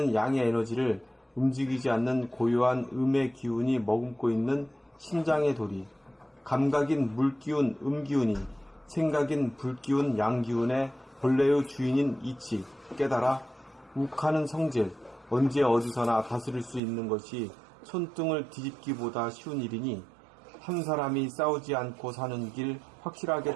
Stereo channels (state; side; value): drops out; left; at 16.8 s